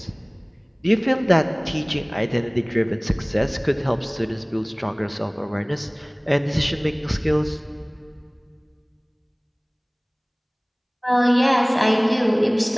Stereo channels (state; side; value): identical; both; correlation 1.00